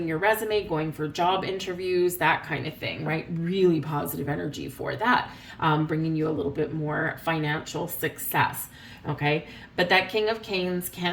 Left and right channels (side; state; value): both; identical; correlation 1.00